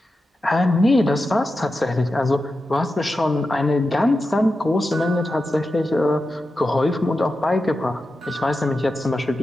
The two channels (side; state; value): both; normal; correlation 0.91